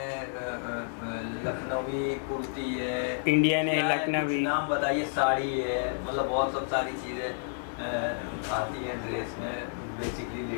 लखनवी कुर्ती है, इंडियन है, लखनवी, नाम बताइए, साड़ी है, मतलब बहुत सब सारी चीज़ें आती हैं ड्रेस में बेसिकली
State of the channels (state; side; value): silent; right; digital silence